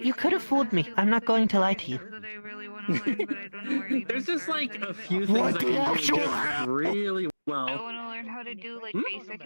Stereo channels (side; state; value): both; inverted; correlation -1.00